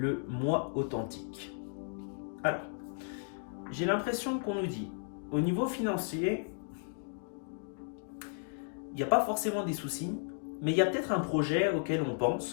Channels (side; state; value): right; silent; digital silence